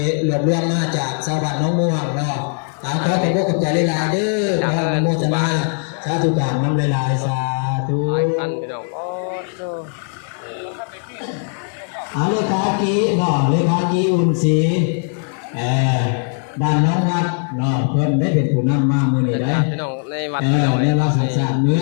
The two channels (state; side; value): silent; right; 56 dB below the other